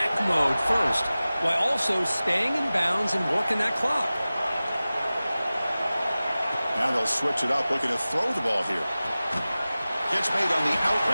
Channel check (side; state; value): both; inverted; correlation -0.97